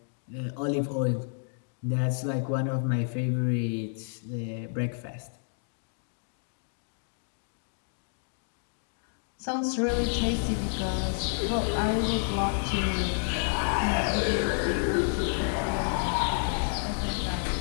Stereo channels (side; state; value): right; silent; digital silence